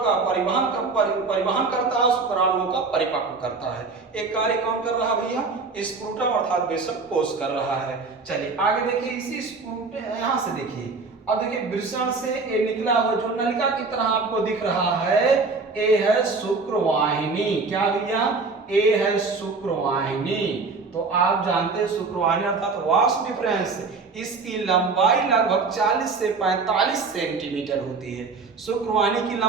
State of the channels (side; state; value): left; quieter; 4.2 dB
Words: परिवहन करता है, शुक्राणुओं का परिपक्व करता है। एक कार्य कौन कर रहा है भैया? स्क्रूटम अर्थात वृषणकोश कर रहा है। चलिए आगे देखिए, इसी स्क्रूटम यहाँ से देखिए, अब देखिए वृषण से ये निकला हुआ जो नलिका की तरह आपको दिख रहा है, ये है शुक्रवाहिनी। क्या भैया? ये है शुक्रवाहिनी। तो आप जानते हैं शुक्रवाहिनी अर्थात वास्ट डिफरेंस, इसकी लंबाई लगभग 40 से 45 सेंटीमीटर होती है। शुक्रवाहिनी की